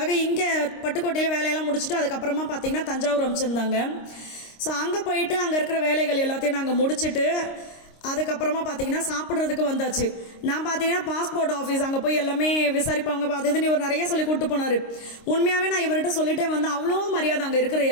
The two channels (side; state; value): right; late; 26 ms